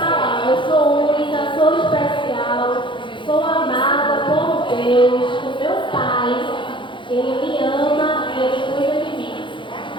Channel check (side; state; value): right; late; 0.24 ms